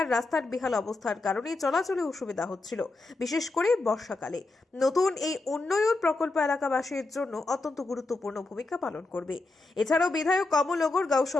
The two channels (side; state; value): right; quieter; 3.3 dB